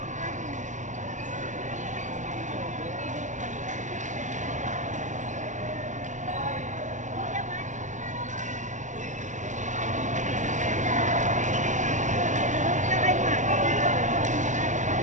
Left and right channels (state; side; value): late; left; 0.36 ms